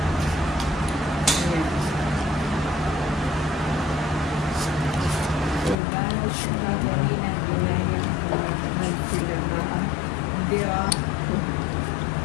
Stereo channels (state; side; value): drops out; right; at 5.8 s